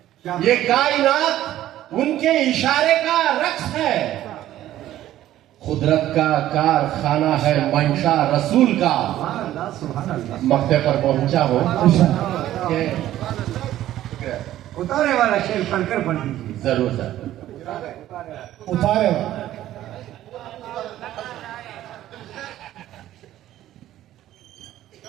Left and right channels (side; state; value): left; quieter; 13.4 dB